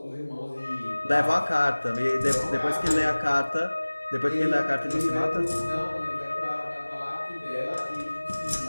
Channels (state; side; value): inverted; both; correlation -1.00